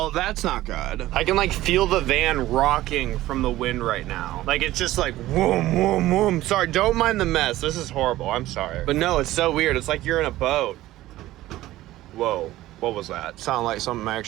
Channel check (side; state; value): left; quieter; 15.8 dB